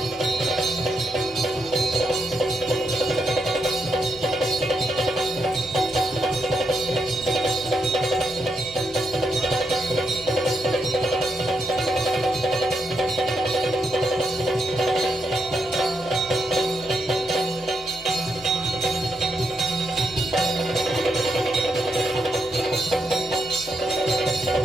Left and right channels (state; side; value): normal; both; correlation 0.81